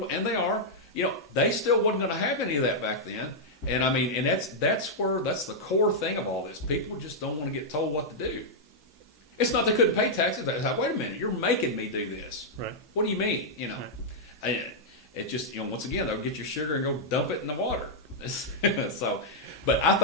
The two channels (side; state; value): both; normal; correlation -0.06